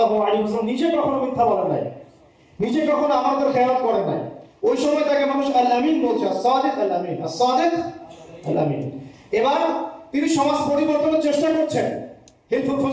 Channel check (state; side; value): identical; both; correlation 1.00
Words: আলাইহি ওয়াসাল্লাম নিজে কখনো মিথ্যা বলেন নাই, নিজে কখনো আমাদের খেয়াল করেন নাই। ওই সময় তাকে মানুষ আল আমিন বলছে, as-সাদিক আল আমিন, as-সাদিক আল আমিন। এবার তিনি সমাজ পরিবর্তনের চেষ্টা করছেন, হিলফুল